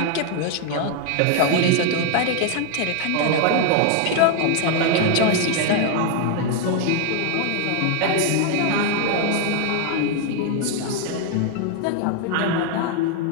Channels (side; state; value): both; different; correlation 0.01